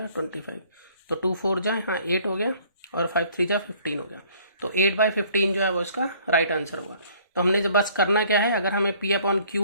25। तो 2 4 जा हाँ 8 हो गया और 5 3 जा 15 हो गया। तो 8/15 जो है वो इसका राइट आंसर होगा। तो हमने जब बस करना क्या है, अगर हमें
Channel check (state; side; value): inverted; both; correlation -0.58